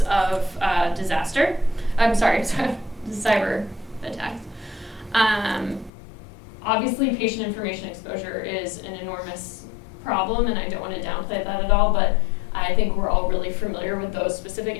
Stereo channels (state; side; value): drops out; right; at 5.9 s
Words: of disaster. Cyber attacks. Obviously, patient information exposure is an enormous problem, and I don't want to downplay that at all, but I think we're all really familiar with those specific